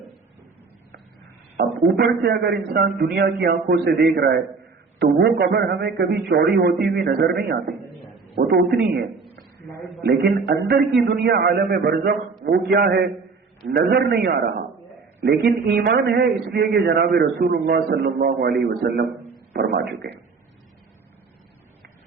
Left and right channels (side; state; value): left; quieter; 4.6 dB